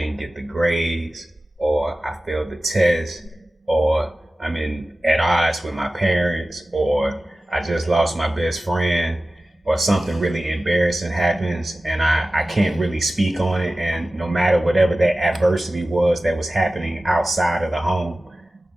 get the grades, or I failed the test, or I'm at odds with my parents, or I just lost my best friend, or something really embarrassing happens and I can't really speak on it. And no matter whatever that adversity was that was happening outside of the home,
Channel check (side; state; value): both; normal; correlation 0.96